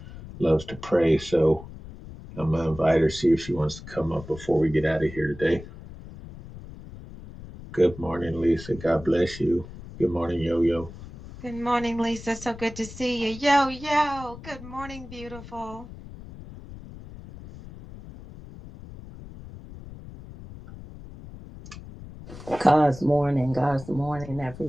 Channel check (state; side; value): noise; left; rumble, 15 dB below the sound